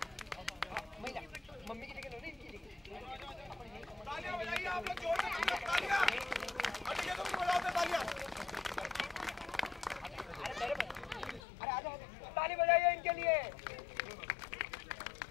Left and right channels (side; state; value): right; drops out; at 11.4 s